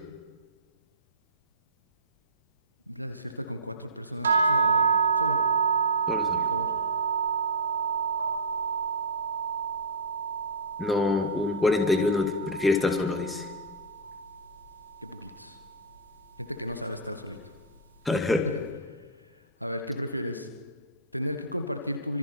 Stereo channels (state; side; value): normal; both; correlation -0.16